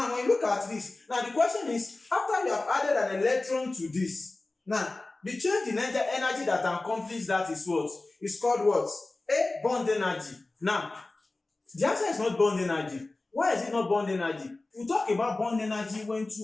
when you look at this, now the question is, after after you have added an electron to this, now the change in energy that accomplishes that is what? It's called what? A bond energy. Now, the answer is not bond energy. Why is it not bond energy? We talk about bond energy when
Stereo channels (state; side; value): quieter; right; 3.1 dB